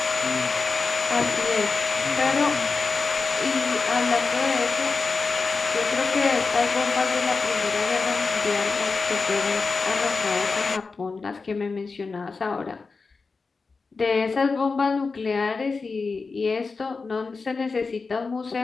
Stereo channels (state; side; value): quieter; right; 4.4 dB